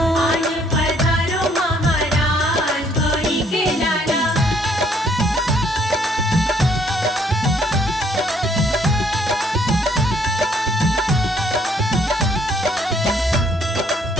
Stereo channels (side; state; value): both; normal; correlation 0.65